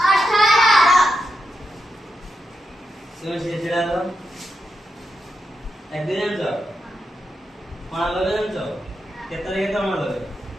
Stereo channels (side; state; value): both; normal; correlation 0.86